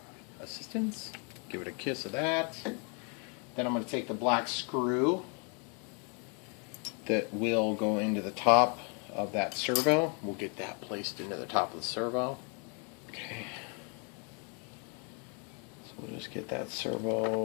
assistance. Give it a kiss of that. Then I'm going to take the black screw that will go into the top of that servo. We'll get that placed into the top of the servo. Okay. So we'll just get that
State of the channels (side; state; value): right; quieter; 37.4 dB